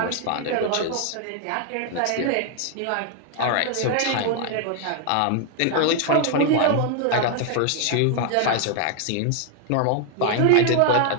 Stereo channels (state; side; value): different; both; correlation 0.00